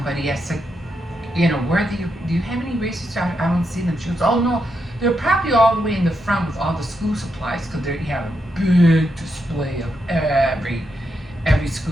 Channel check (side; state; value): both; normal; correlation 0.83